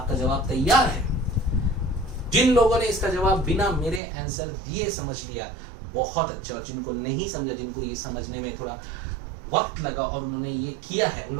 जवाब तैयार है। जिन लोगों ने इसका जवाब बिना मेरे आंसर दिए समझ लिया बहुत अच्छा, और जिनको नहीं समझा, जिनको ये समझने में थोड़ा वक्त लगा और उन्होंने ये किया है, उन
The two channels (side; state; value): left; drops out; at 4.0 s